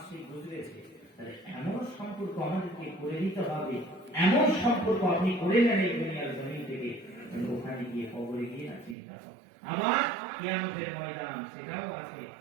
গুজরেছে, তাহলে এমন সম্পর্ক আমাদেরকে করে দিতে হবে, এমন সম্পর্ক আপনি করে নেন এই দুনিয়ার জমিন থেকে, ওখানে গিয়ে কবরে গিয়ে না চিন্তা হবে। আবার কিয়ামতের ময়দান সেটাও আছে,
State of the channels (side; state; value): left; drops out; at 9.0 s